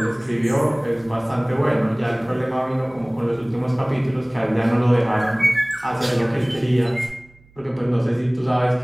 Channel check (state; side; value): noise; right; hum, 29 dB below the sound